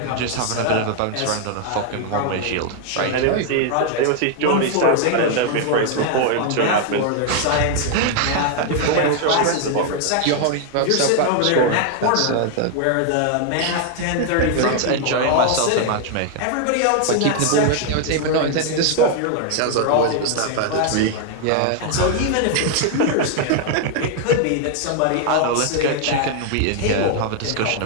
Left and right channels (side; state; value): both; different; correlation 0.00